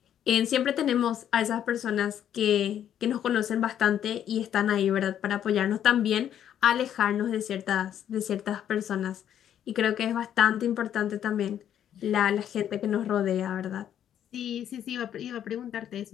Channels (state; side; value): quieter; right; 10.1 dB